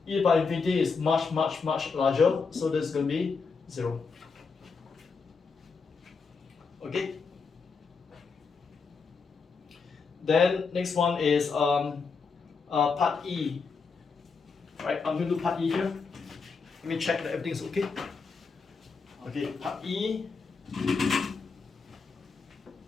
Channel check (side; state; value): right; quieter; 5.0 dB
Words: e to the power infinity is much larger, so this is going to be 0. Okay. Then next one is part E. Right, I'm going to do part E here. Let me check that everything is okay. Okay, part E.